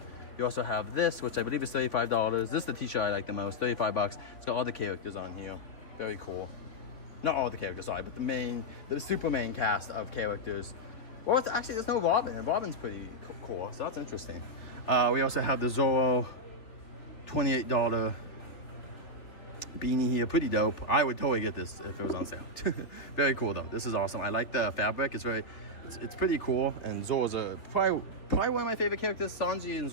You also have this, which I believe is $35. This is the t-shirt I like the most, 35 bucks. It's got all the characters on here. Very cool. Not all the characters, sorry, but the super main cast of characters. Well, actually, there's no Robin, and Robin's pretty cool, so that's interesting. We also have the Zorro $28 beanie here, pretty dope. I would totally get this if it was on sale. Very cool though. This is awesome. I like the fabric. It's pretty cool. And Zorro's probably one of my favorite characters. Sanji and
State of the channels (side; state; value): right; late; 3.8 ms